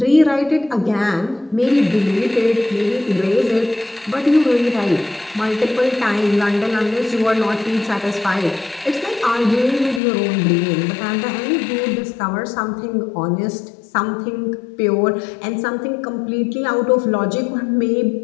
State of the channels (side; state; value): right; drops out; at 10.0 s